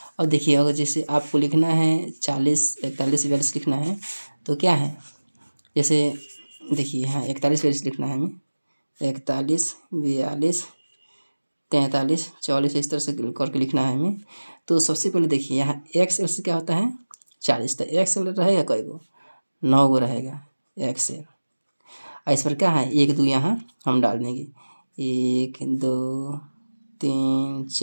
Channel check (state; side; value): inverted; both; correlation -1.00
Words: और देखिए अगर जैसे आपको लिखना है 40, 41, 42 लिखना है तो क्या है, जैसे देखिए यहाँ 41, 42 लिखना है हमें, 41, 42, 43, 44 इस तरह से करके लिखना है हमें। तो सबसे पहले देखिए यहाँ XL से क्या होता है 40, तो XL रहेगा कई गो, 9 गो रहेगा XL। इस पर क्या है 1 2 यहाँ हम डाल देंगे, 1 2 3